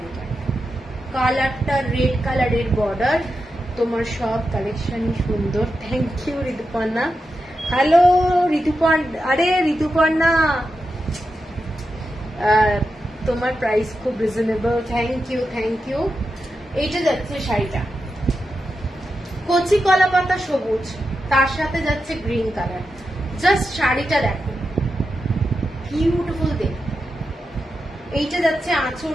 কালারটা রেড কালারের বর্ডার, তোমার সব কালেকশনই সুন্দর। Thank you Rituparna. Hello Rituparna, আরে ঋতুপর্ণা তোমার প্রাইস খুব reasonable, thank you thank you. এইটা যাচ্ছে শাড়িটা কচি কলা পাতা সবুজ, তার সাথে যাচ্ছে গ্রিন কালার। জাস্ট শাড়িটা দেখো, বিউটিফুল দেখতে। এইটা যাচ্ছে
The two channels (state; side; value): normal; both; correlation 0.89